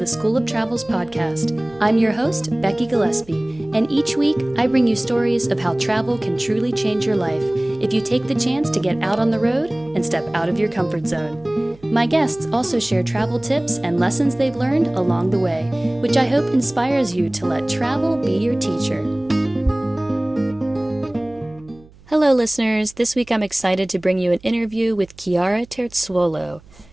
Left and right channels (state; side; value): noise; right; hum, 25 dB below the sound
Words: School of Travel's podcast. I'm your host, Becky Gillespie, and each week I bring you stories of how travel can truly change your life if you take the chance to get out on the road and step out of your comfort zone. My guests also share travel tips and lessons they've learned along the way, which I hope inspires you to let travel be your teacher. Hello, listeners. This week I'm excited to bring you an interview with Chiara Terzuolo,